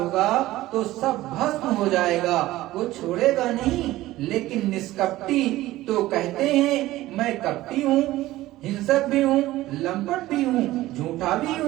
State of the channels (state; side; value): quieter; left; 16.5 dB